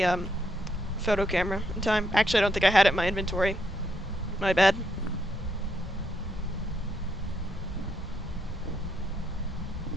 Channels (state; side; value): normal; both; correlation 0.77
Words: photo camera in time. Actually, I don't think I had it in my inventory. My bad.